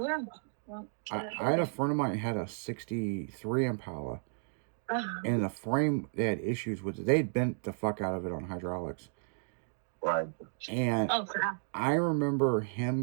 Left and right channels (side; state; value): left; silent; digital silence